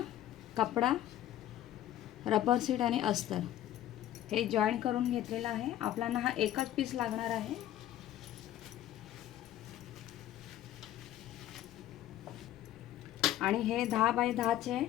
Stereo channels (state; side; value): quieter; right; 12.8 dB